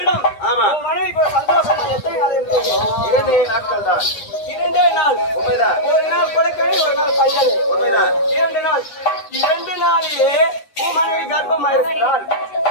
ஆமா மனைவிக்கு சந்தோஷமா எத்தனை நாள் இருக்கு 2 நாட்கள் தான் 2 நாள் உண்மைதான் 1 நாள் கொலைக்கறி 1 நாள் பஞ்சல் உண்மைதான் 2 நாள் 2 நாளிலே மனைவி கர்ப்பமா இருக்கிறாள்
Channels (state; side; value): late; right; 9.6 ms